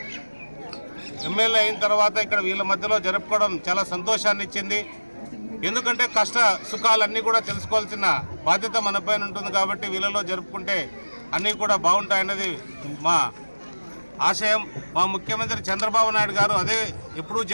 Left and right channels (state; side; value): inverted; both; correlation -1.00